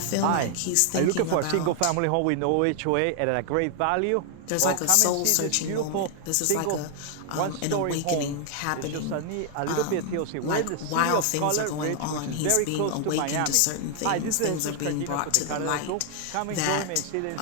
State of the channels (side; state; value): both; different; correlation 0.00